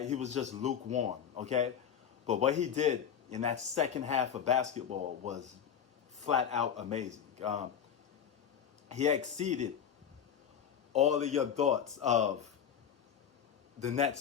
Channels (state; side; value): quieter; right; 8.3 dB